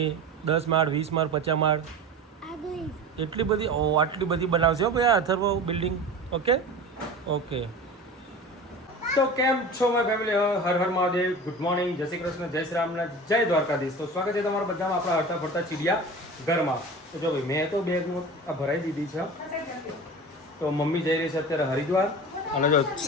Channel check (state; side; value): normal; both; correlation 0.34